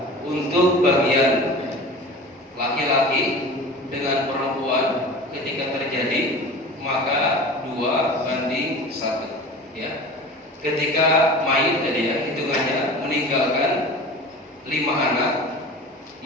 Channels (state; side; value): normal; both; correlation 0.36